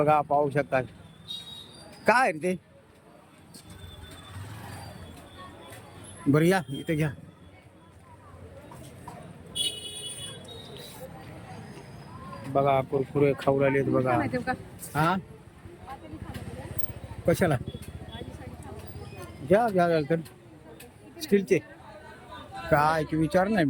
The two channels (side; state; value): both; identical; correlation 1.00